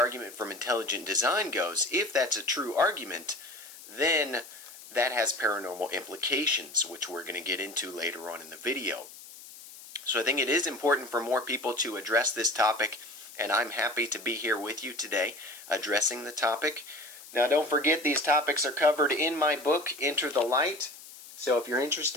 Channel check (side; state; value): left; noise; hiss, 17 dB below the sound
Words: from intelligent design goes, if that's a true argument, then that has paranormal implications, which we're going to get into later on in the video. So I think it is important for more people to address this topic, and I'm happy to be here with you today addressing the topic. Now don't forget, these topics are covered in my book, Enter the Light. So if you're